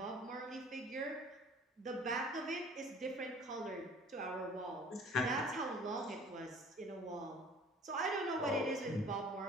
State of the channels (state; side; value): normal; both; correlation 0.50